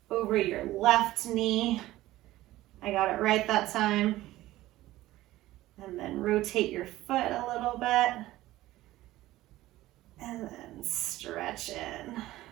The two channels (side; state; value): left; quieter; 16.2 dB